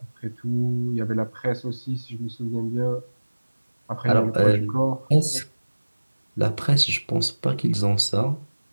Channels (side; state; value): both; inverted; correlation -1.00